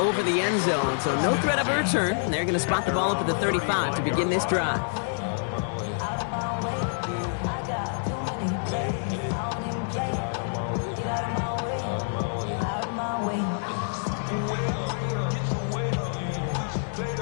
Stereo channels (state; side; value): silent; right; digital silence